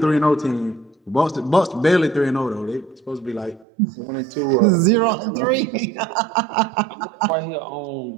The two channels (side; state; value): left; drops out; at 3.7 s